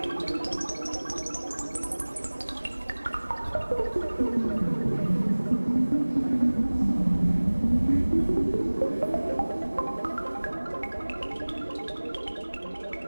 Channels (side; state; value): both; inverted; correlation -1.00